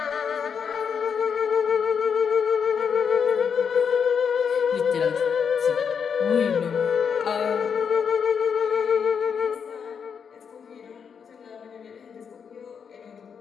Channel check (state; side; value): quieter; right; 6.8 dB